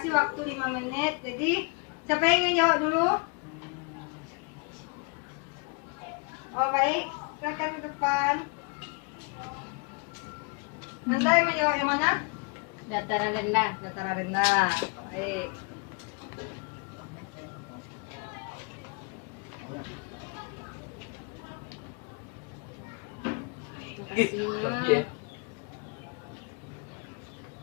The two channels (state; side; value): quieter; right; 32.6 dB